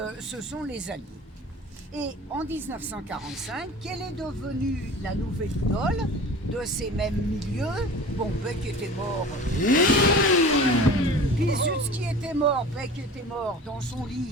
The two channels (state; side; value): normal; both; correlation 0.39